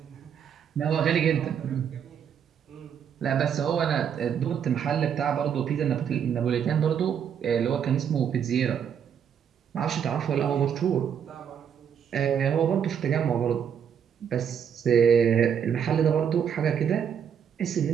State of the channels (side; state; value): left; quieter; 8.1 dB